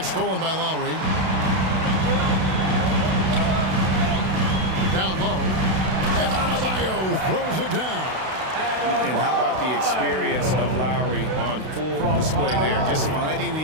stolen by Lowry. Down low. And Adebayo throws it down. And how about the experience of Lowry on full display there? Just finding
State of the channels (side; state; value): left; late; 32 ms